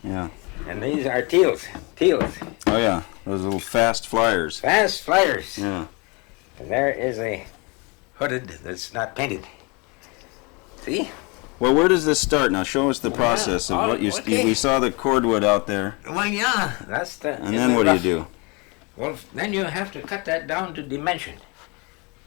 Yeah. And these are teals. Teals. Oh yeah, those little fast flyers. Fast flyers. Yeah. And there is a hooded that's not painted. See? Well, where does this start? Now, show us the process of what you. okay. We saw the cordwood out there, Well, yeah. That's the. and then what do you do? Well, then you have to cut that down to dimension.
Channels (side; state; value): right; quieter; 29.4 dB